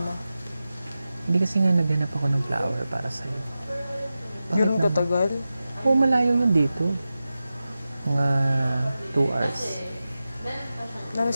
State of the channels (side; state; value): both; inverted; correlation -0.94